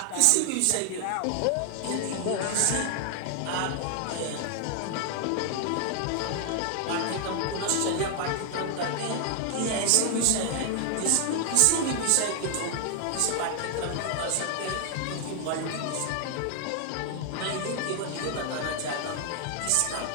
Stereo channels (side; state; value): both; different; correlation 0.00